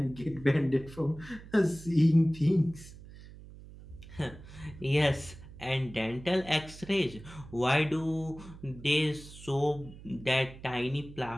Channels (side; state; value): right; noise; hum, 17 dB below the sound